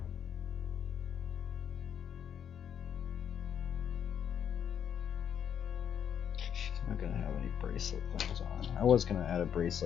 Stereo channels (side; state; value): right; quieter; 8.6 dB